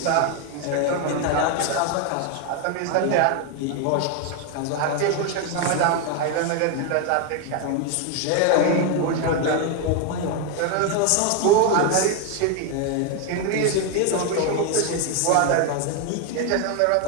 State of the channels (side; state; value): both; different; correlation 0.01